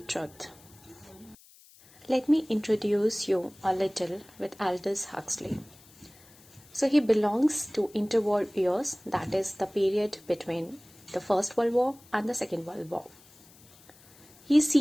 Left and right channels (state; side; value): noise; left; hiss, 25 dB below the sound